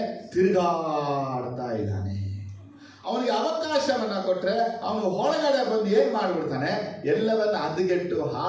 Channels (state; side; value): identical; both; correlation 1.00